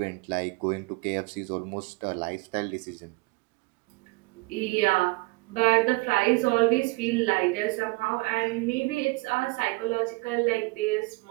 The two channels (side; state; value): left; quieter; 24.4 dB